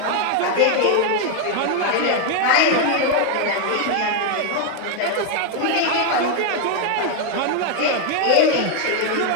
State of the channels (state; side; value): different; both; correlation 0.01